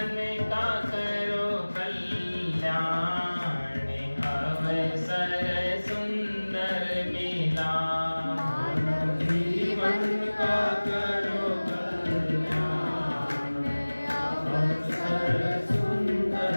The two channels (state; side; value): inverted; both; correlation -1.00